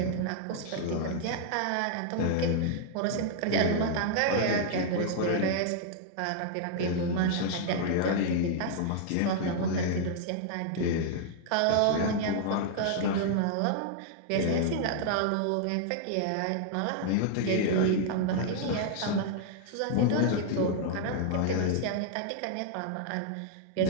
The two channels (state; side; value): different; both; correlation 0.00